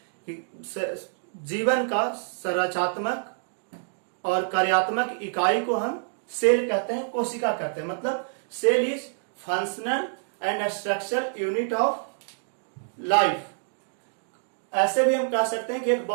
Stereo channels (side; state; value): left; silent; digital silence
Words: कि जीवन का संरचनात्मक और कार्यात्मक इकाई को हम सेल कहते हैं, कोशिका कहते हैं। मतलब cell is functional and structural unit of life. ऐसे भी हम कह सकते हैं कि एक